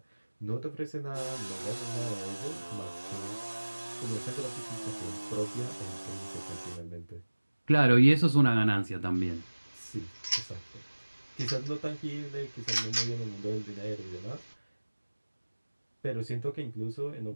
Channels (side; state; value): both; inverted; correlation -1.00